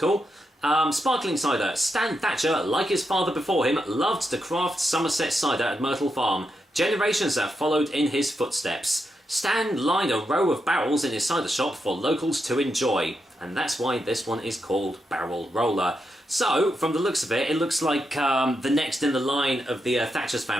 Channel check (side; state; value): both; normal; correlation 0.84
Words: Sparkling cider. Stan Thatcher, like his father before him, loved to craft Somerset cider at Myrtle Farm. Generations have followed in his footsteps. Stan lined a row of barrels in his cider shop for locals to enjoy, and that's why this one is called Barrel Roller. So, from the looks of it, it looks like the next in the line of the Thatcher's